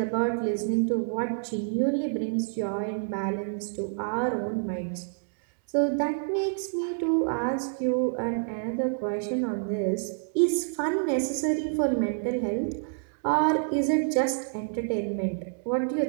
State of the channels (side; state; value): left; silent; digital silence